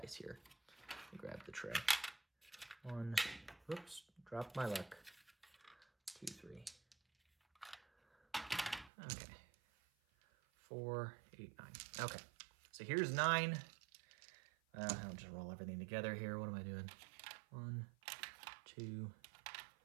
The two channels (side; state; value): left; drops out; at 8.9 s